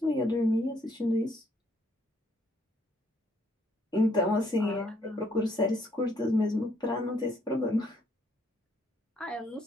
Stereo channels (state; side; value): normal; both; correlation 0.68